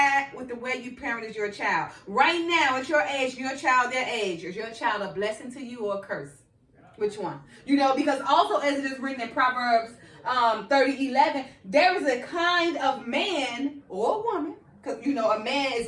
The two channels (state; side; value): identical; both; correlation 1.00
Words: with the way you parented your child? Right now, at your age, your child their age, is your child a blessing to you or a curse? Which one? Because also as it is written in Proverbs 30:11, there is a kind of man or woman, because a man is